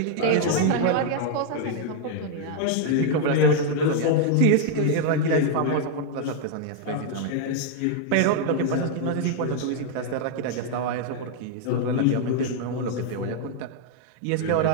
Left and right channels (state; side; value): different; both; correlation 0.00